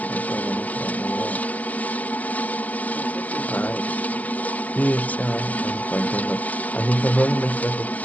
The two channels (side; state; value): right; late; 0.078 ms